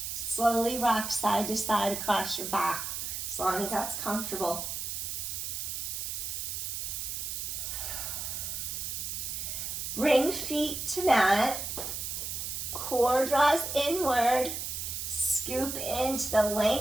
slowly rock side to side across your back, as long as that's comfortable. Bring feet to mat, core draws inward, scoop into the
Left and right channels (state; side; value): noise; right; hiss, 4 dB below the sound